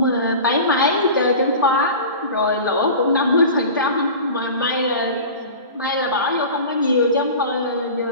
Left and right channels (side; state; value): both; inverted; correlation -0.35